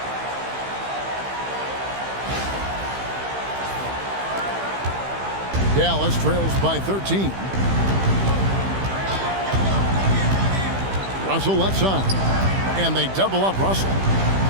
Dallas trails by 13. Russell left side. And they double up Russell.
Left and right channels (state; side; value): late; left; 15 ms